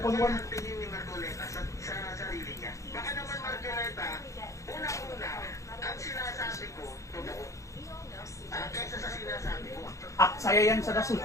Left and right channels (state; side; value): late; right; 0.15 ms